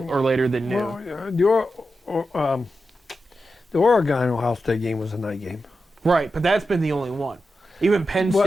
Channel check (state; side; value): normal; both; correlation 0.90